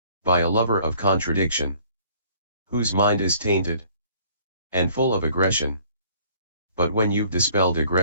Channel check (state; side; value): inverted; both; correlation -0.57